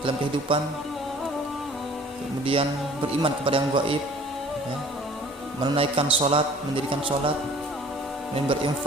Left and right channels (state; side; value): normal; both; correlation 0.51